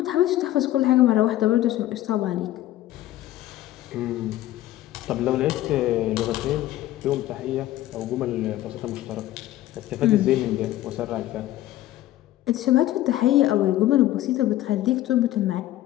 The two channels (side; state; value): right; quieter; 14.6 dB